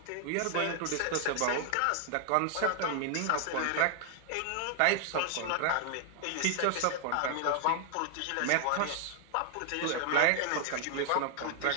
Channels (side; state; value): both; different; correlation 0.00